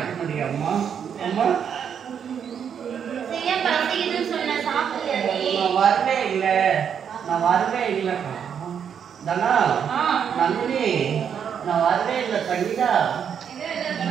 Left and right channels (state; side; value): quieter; left; 7.9 dB